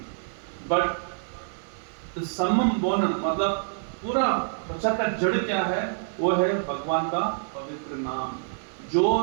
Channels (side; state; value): left; silent; 60 dB below the other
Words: but the समम बोनम, मतलब पूरा प्रचार का जड़ क्या है, वो है भगवान का पवित्र नाम। जो